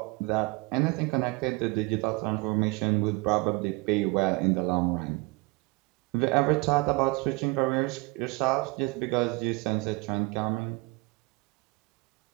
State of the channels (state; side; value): quieter; left; 25.9 dB